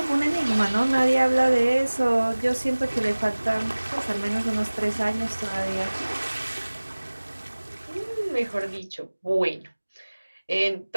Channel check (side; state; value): both; inverted; correlation -1.00